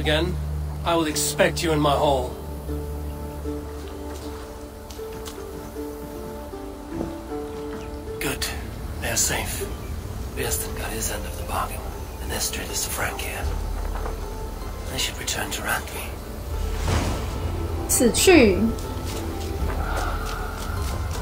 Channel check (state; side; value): identical; both; correlation 1.00